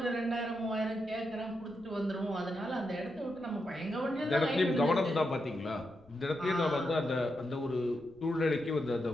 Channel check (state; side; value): noise; left; rumble, 28 dB below the sound